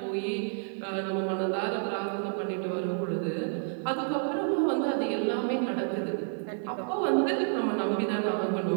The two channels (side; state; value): left; silent; digital silence